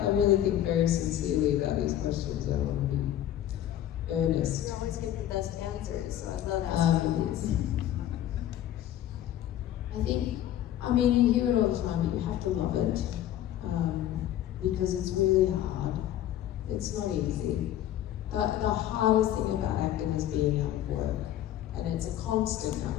really think very sincerely about these questions. I want to be earnest. You always give the best answers, so I love asking these. I mean, you hear it all the time, but you have to love it, because it's really hard. It's not easy. The hardest thing about acting is being out of work, and it's a constant out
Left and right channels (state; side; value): quieter; right; 12.0 dB